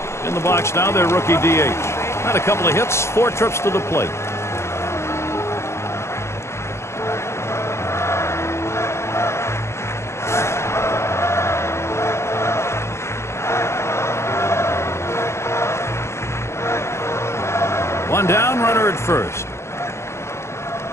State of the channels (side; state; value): right; late; 0.13 ms